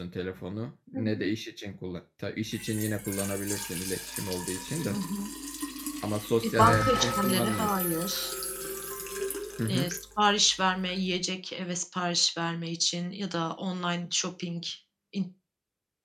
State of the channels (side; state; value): both; identical; correlation 1.00